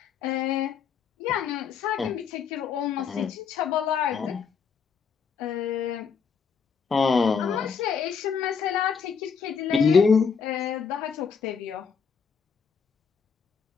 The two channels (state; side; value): quieter; right; 6.2 dB